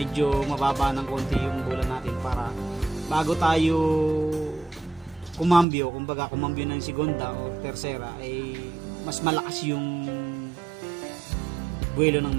mababa ng konti yung bola natin para bago tayo kumambyo, kumbaga kumambyo ng segunda o tersera, ay mas malakas yung buwelo ng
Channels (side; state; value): left; drops out; at 5.7 s